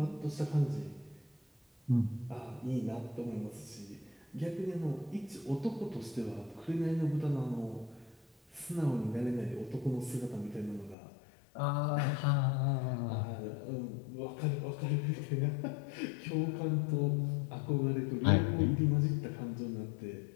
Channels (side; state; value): right; drops out; at 11.0 s